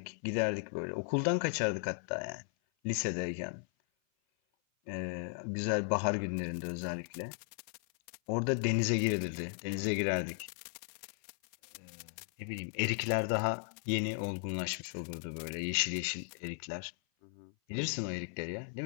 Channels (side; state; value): right; silent; 54 dB below the other